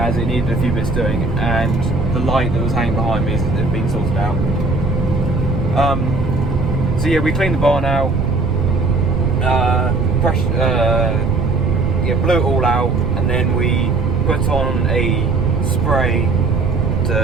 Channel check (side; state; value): right; noise; rumble, 2 dB below the sound